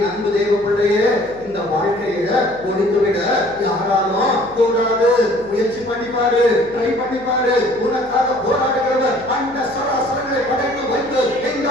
அன்பு தேவ பிள்ளைய, இந்த வாழ்க்கைய ஒழித்து விட யாராலும் கூடாது. முயற்சி பண்ணிப்பாரு, ட்ரை பண்ணிப்பாரு. உனக்காக போராடுகிறவர் அந்த சராசரங்களை படைத்து வைத்து இந்த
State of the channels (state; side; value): noise; left; hum, 23 dB below the sound